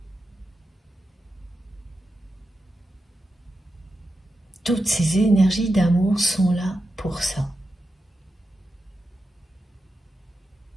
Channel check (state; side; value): normal; both; correlation 0.89